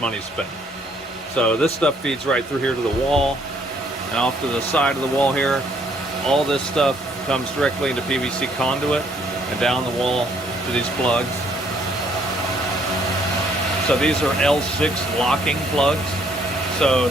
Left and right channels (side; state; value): both; normal; correlation 0.66